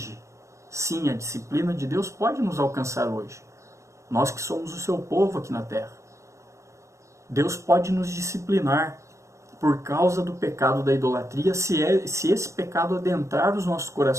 Sim, a disciplina de Deus pode nos alcançar hoje. Nós que somos o seu povo aqui na terra. Deus pode nos disciplinar por causa do pecado da idolatria, se esse pecado adentrar os nossos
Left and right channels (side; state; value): left; late; 0.14 ms